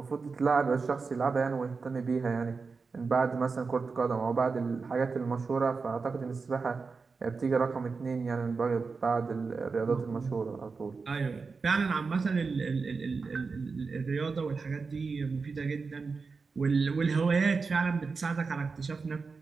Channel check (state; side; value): quieter; left; 4.6 dB